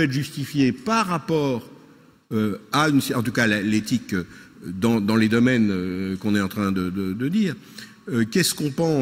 être justifié par rapport à une... En tout cas, l'éthique dans les domaines qu'on est en train de dire. Qu'est-ce qu'on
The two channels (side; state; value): both; identical; correlation 1.00